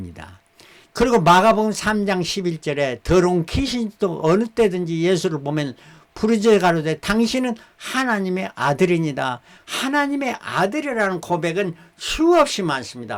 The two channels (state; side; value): identical; both; correlation 1.00